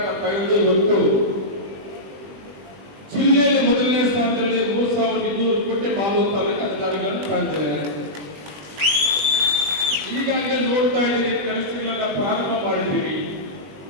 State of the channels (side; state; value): left; late; 20 ms